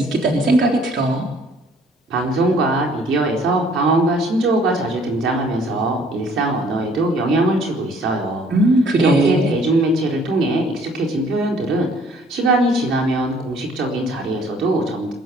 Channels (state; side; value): normal; both; correlation 0.58